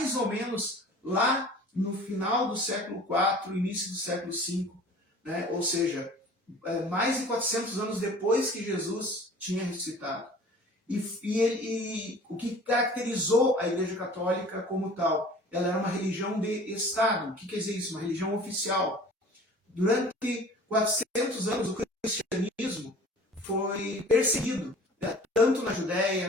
ou menos lá no final do século IV, início do século V, né? Ou seja, mais de 400 anos depois que Jesus tinha ressuscitado. E o que caracterizou a Igreja Católica como tal? Ela era uma religião de Estado. O que quer dizer isso? Uma religião oficial. Durante 400 anos, o cristianismo foi perseguido, né? Tanto na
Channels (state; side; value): normal; both; correlation 0.46